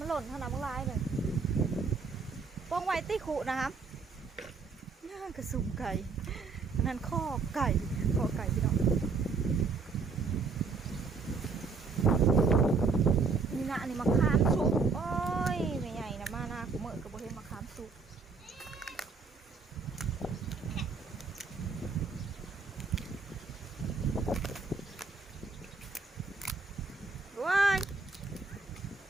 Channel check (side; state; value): left; quieter; 4.7 dB